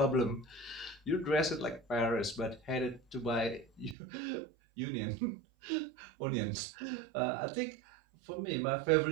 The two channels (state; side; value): drops out; left; at 4.0 s